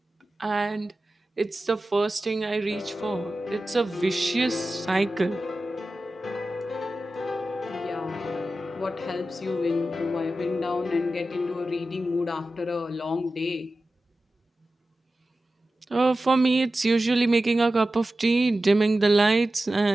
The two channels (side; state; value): both; normal; correlation 0.94